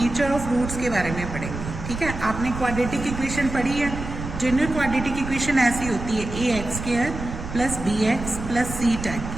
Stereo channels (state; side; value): noise; right; rumble, 8 dB below the sound